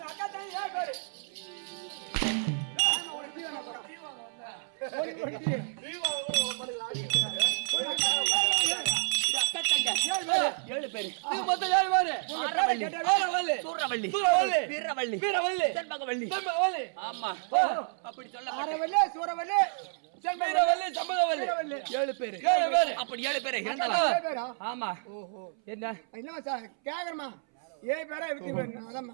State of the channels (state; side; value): silent; left; 58 dB below the other